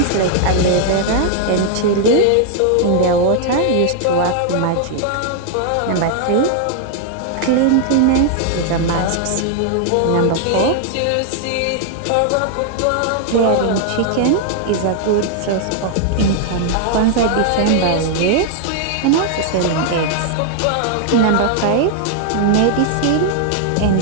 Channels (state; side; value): different; both; correlation 0.00